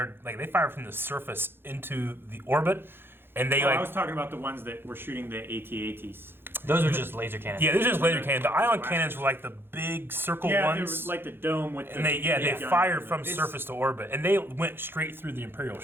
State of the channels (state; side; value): late; left; 0.10 ms